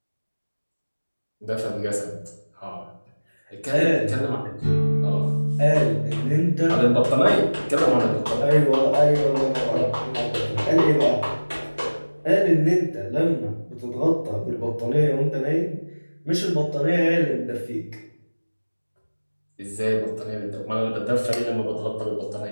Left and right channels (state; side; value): inverted; both; correlation -1.00